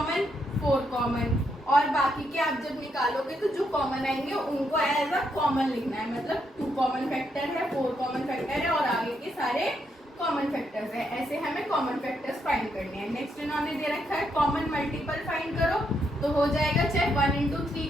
4 कॉमन, और बाकी के आप जब निकालोगे तो जो कॉमन आएंगे उनको एज अ कॉमन लिखना है, मतलब 2 कॉमन फैक्टर है, 4 कॉमन फैक्टर है और आगे के सारे कॉमन फैक्टर्स है। ऐसे हमें कॉमन फैक्टर्स फाइंड करने हैं। नेक्स्ट इन्होंने दे रखा है कॉमन मल्टीपल फाइंड करो, तो हो जाएगा चाहे 1 इंटू 3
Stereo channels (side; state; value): both; normal; correlation 0.78